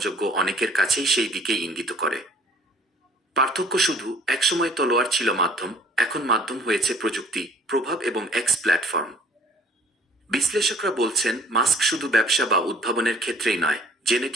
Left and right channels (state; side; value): normal; both; correlation 0.54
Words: অনেকের কাছেই সেই দিকেই ইঙ্গিত করে। পার্থক্য শুধু, একসময় তলোয়ার ছিল মাধ্যম, এখন মাধ্যম হয়েছে প্রযুক্তি, প্রভাব এবং এক্স প্ল্যাটফর্ম। বিশ্লেষকরা বলছেন, মাস্ক শুধু ব্যবসা বা উদ্ভাবনের ক্ষেত্রেই নয়,